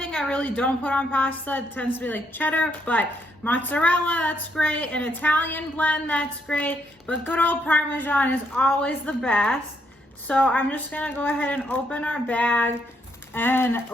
I really don't put on pasta tends to be like cheddar, but mozzarella, that's great. An Italian blend, that's great. But good old Parmesan is always the best. So I'm just gonna go ahead and open our bag and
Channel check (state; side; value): normal; both; correlation 0.74